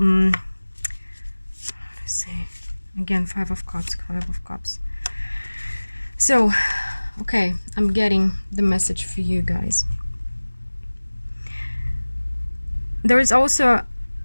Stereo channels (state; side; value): inverted; both; correlation -1.00